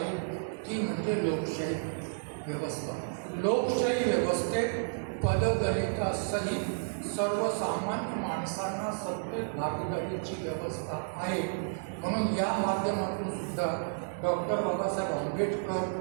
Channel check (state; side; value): silent; left; digital silence